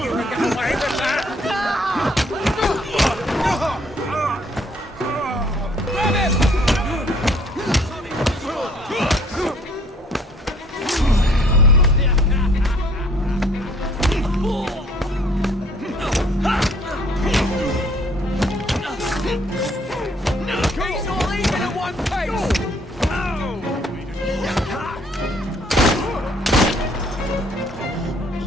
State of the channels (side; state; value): both; normal; correlation 0.61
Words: you can get away with that? Grab him! He's all even at one pace!